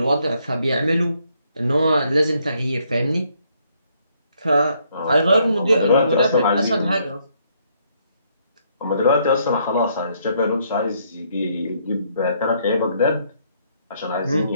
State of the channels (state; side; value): inverted; both; correlation -0.71